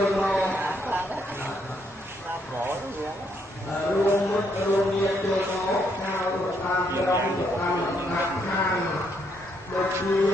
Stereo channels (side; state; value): both; normal; correlation 0.74